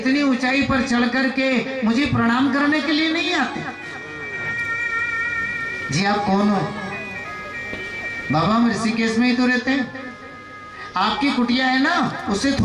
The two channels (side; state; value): both; identical; correlation 1.00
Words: ऊंचाई पर चढ़ करके मुझे प्रणाम करने के लिए नहीं आते। जी आप कौन हो? बाबा हम ऋषिकेश में ही तो रहते हैं, आपकी कुटिया है ना, उससे